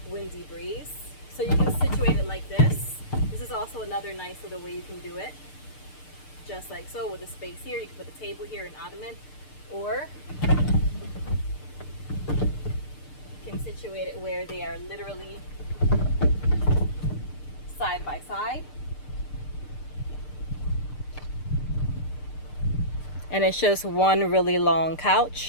windy breeze. So you can situate it like this. This is also another nice little way you can do it. Just like so, with a space here, you can put a table here, an ottoman, or you can situate it where they are literally side by side. And it's just one really long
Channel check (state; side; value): late; right; 6.7 ms